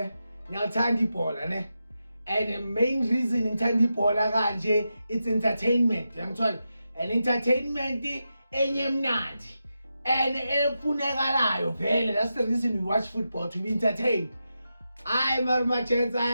Ngiyathanda ibhola, ne? And the main reason ngithanda ibhola kanje, it's entertainment. Yangithola. And entertainment enye mnandi. And efunekalayo vele. That's the reason we watch football, to be entertained. Hayi marumachens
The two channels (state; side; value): inverted; both; correlation -0.89